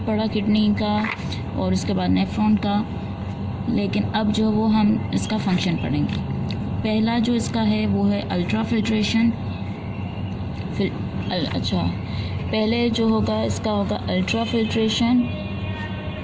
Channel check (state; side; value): identical; both; correlation 1.00